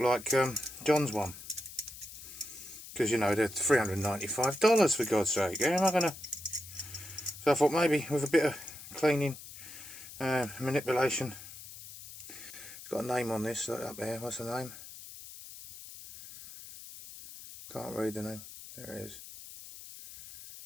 John's one, because you know they're $395 for God's sake. Yeah, am I gonna? So I thought maybe with a bit of cleaning, manipulation. It's got a name on this up there. What's the name? Can't read the name. There it is.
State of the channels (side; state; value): left; noise; hiss, 14 dB below the sound